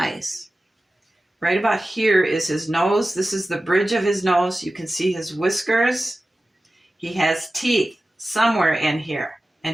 Right about here is his nose. This is the bridge of his nose. You can see his whiskers. He has teeth somewhere in here,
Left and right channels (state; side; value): normal; both; correlation 0.95